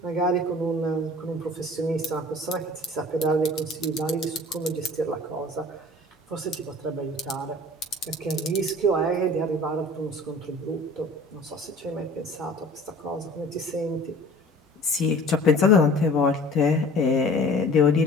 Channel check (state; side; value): normal; both; correlation 0.45